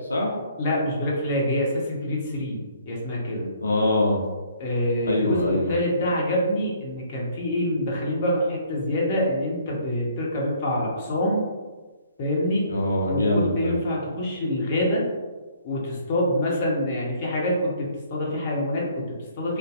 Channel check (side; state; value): both; inverted; correlation -0.60